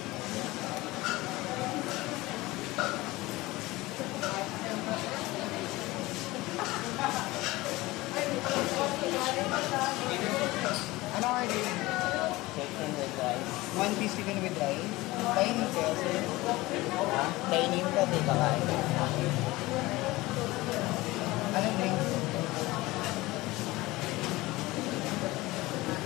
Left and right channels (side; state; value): right; quieter; 19.9 dB